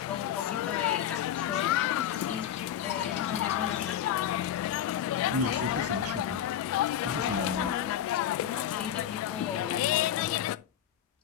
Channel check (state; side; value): quieter; right; 10.2 dB